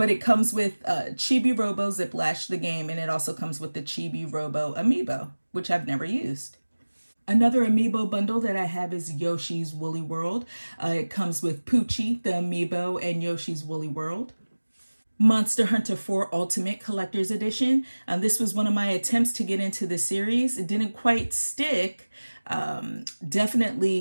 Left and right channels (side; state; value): both; inverted; correlation -1.00